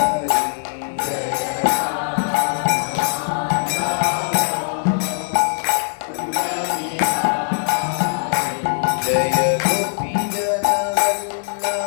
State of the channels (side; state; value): right; silent; digital silence